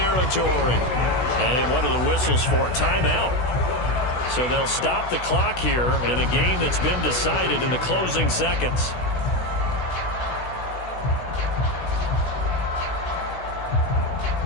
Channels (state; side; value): late; right; 16 ms